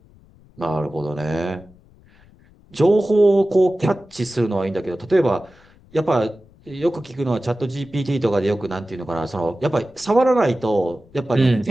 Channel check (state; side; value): noise; left; rumble, 27 dB below the sound